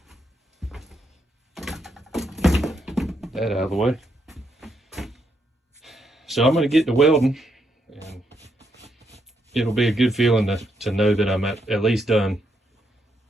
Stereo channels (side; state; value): both; normal; correlation 0.78